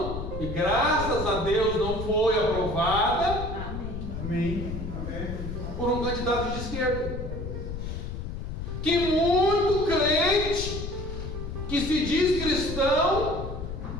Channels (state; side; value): noise; left; rumble, 6 dB below the sound